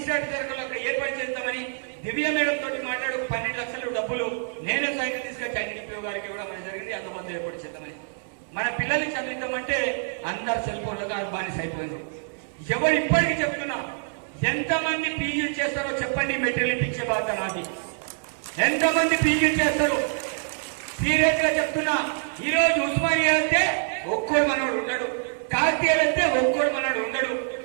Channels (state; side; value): silent; left; 61 dB below the other